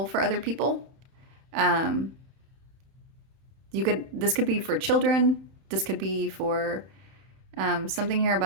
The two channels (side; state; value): left; late; 31 ms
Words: for other people. This could be for children. This could be for something here